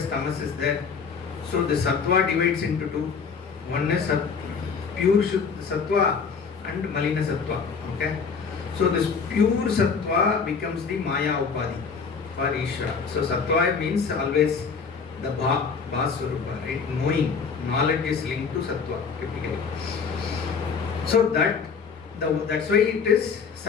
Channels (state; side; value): quieter; right; 5.6 dB